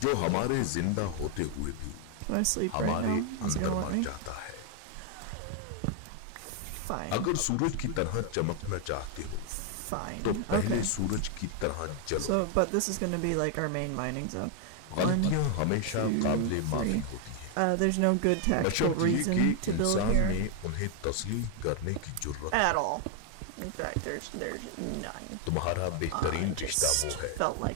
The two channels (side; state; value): both; different; correlation 0.00